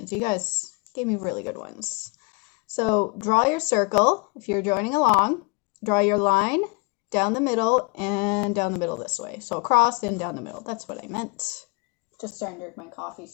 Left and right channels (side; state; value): right; quieter; 30.1 dB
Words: You guys gave me really good ones. So draw your circle if you're joining along. Draw your line down the middle and down the middle this way. So across and down the middle. That's what I meant. Just starting to drink my coffee.